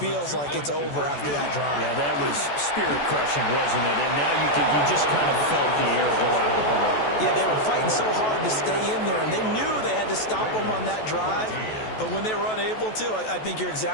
like it's over after that drive. Yeah, that was spirit-crushing, wasn't it? And now you just kind of felt the air go out of the balloon. Yeah, they were fighting so hard to stay in there, and they knew they had to stop them on that drive. But when they were unable to, I think you're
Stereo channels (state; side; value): late; right; 14 ms